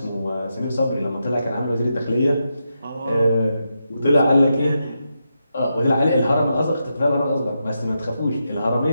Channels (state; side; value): inverted; both; correlation -0.85